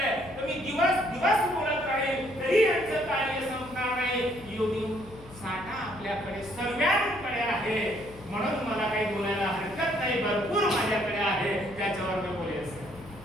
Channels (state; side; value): noise; left; hum, 19 dB below the sound